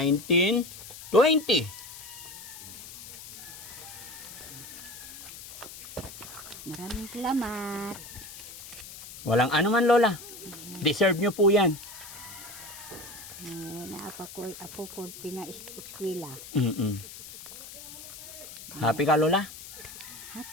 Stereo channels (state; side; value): noise; left; hiss, 14 dB below the sound